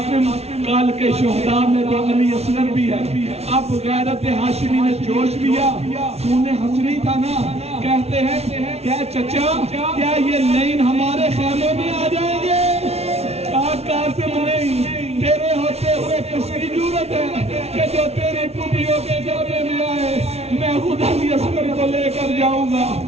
کال کے شہداء میں تو علی اصغر بھی ہے، اب غیرت ہاشمی نے جوش لیا، خون حسنی تھا نا، کہتے ہیں کیا چچا کیا یہ لین ہمارے خیموں میں آ جائیں گے؟ کہا قاسم نہیں، تیرے ہوتے ہوئے کس کی ضرورت ہے کہ جو تیری پولیوں کے جامعے میں آئے، میں خود علی اصغر کو لے کر جاؤں گا۔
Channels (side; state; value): left; late; 0.31 ms